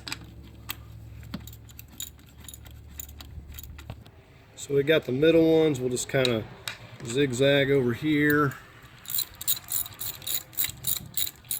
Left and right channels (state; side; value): identical; both; correlation 1.00